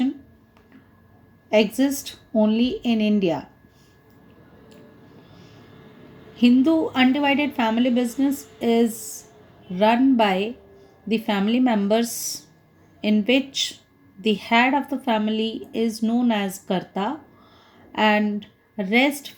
exists only in India. Hindu undivided family business is run by the family members, in which the head of the family is known as Karta and rest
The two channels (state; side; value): identical; both; correlation 1.00